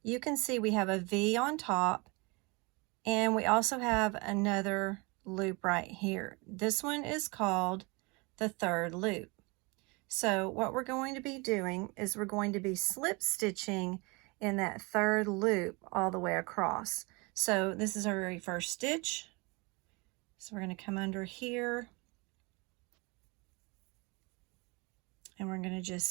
you can see we have a V on top, and we also have another loop right here. This one is called the third loop. So what we're going to be doing is we're going to be slip stitching in that third loop all the way across. So this is our very first stitch. So we're going to come under here, and we're going to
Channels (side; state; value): left; quieter; 27.8 dB